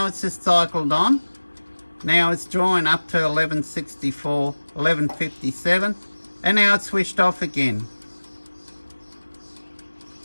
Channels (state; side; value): inverted; both; correlation -1.00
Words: it's just cycled on. Now it's drawing up to 1164, 1157, and now it's switched off again.